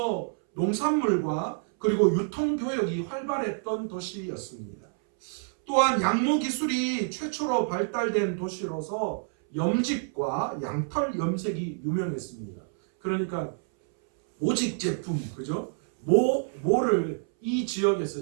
농산물과 그리고 유통교역이 활발했던 도시였습니다. 또한 양모 기술이 최초로 발달된 도시로서 염직과 양털 염색이 유명했습니다. 그러니까 모직 제품, 그죠? 모를 이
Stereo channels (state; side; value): silent; left; 60 dB below the other